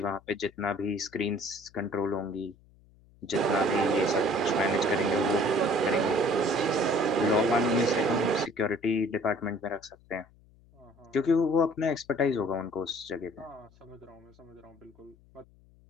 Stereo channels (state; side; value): noise; left; hum, 28 dB below the sound